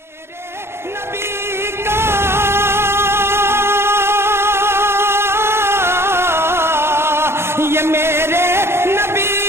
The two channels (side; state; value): left; late; 0.12 ms